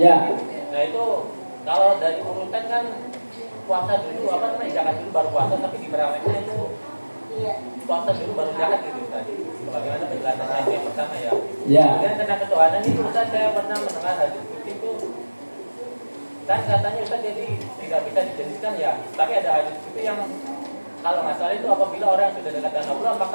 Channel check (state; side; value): inverted; both; correlation -1.00